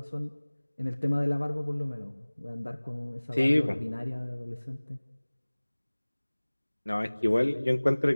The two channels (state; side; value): inverted; both; correlation -1.00